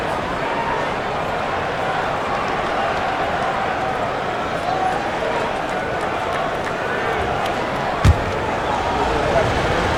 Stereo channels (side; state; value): both; identical; correlation 1.00